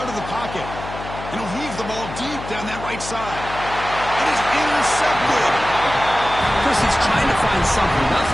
of the pocket. And he'll heave the ball deep down that right side. It is intercepted. Chris, he's trying to find something.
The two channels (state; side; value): noise; left; hum, 11 dB below the sound